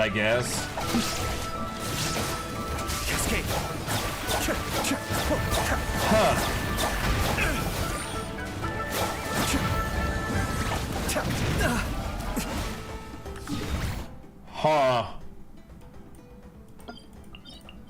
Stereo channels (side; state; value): both; identical; correlation 1.00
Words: guess. Cascade. Huh. Huh.